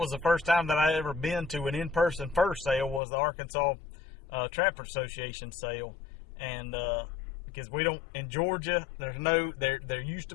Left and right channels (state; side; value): drops out; right; at 3.0 s